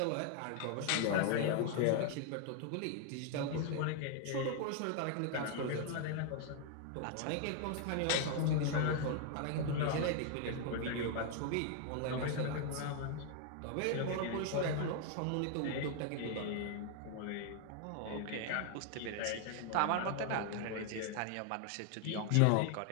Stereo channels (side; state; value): both; different; correlation 0.00